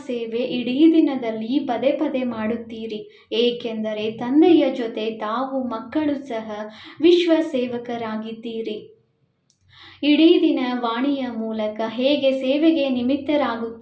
ಸೇವೆ ಇಡೀ ದಿನದಲ್ಲಿ ಪದೇ ಪದೇ ಮಾಡುತ್ತೀರಿ, ಏಕೆಂದರೆ ತಂದೆಯ ಜೊತೆ ತಾವು ಮಕ್ಕಳು ಸಹ ವಿಶ್ವ ಸೇವಕರಾಗಿದ್ದೀರಿ. ಇಡೀ ದಿನ ವಾಣಿಯ ಮೂಲಕ ಹೇಗೆ ಸೇವೆಗೆ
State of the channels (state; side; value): identical; both; correlation 1.00